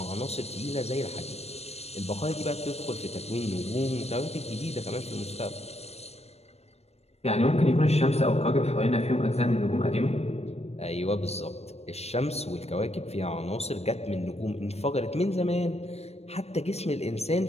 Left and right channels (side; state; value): right; late; 0.31 ms